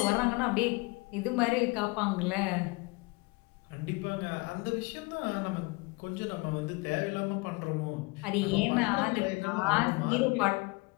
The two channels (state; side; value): quieter; right; 26.3 dB